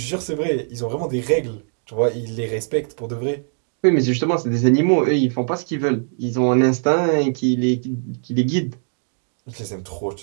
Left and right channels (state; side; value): silent; left; 65 dB below the other